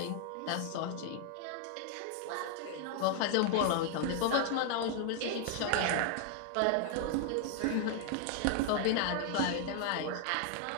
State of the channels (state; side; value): different; both; correlation 0.00